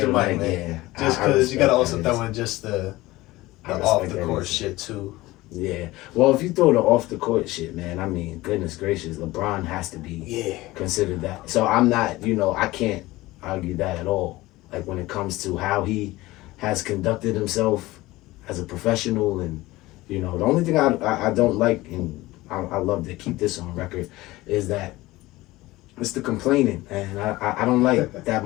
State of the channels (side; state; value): right; quieter; 18.9 dB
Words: to Mike, man. Yeah. Just because you gotta also throw in just the off the court shit too. Yeah. Well, if you throw the off the court shit, man, I mean, goodness gracious, LeBron has to be considered that. So I'm not, I can't argue that at all. Like when it comes to how he has conducted himself as a professional, and the only thing I don't like, and I love to keep this on record, is that it's the complaining, and I don't like that